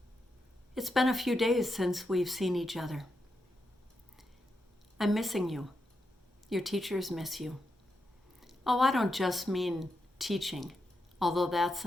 It's been a few days since we've seen each other. I'm missing you. Your teachers miss you. Oh, I don't just mean teaching, although that's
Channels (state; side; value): normal; both; correlation 0.85